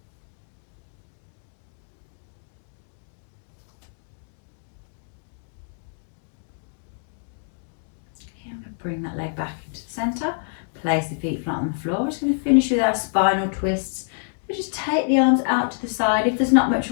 Bring that leg back into the centre, place the feet flat on the floor. We're just going to finish with our spinal twists. So just take the arms out to the side. If there's not much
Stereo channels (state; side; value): silent; right; digital silence